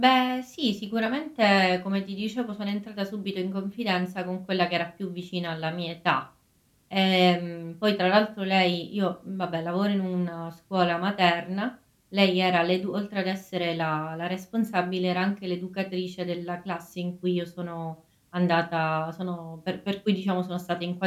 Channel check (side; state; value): both; identical; correlation 1.00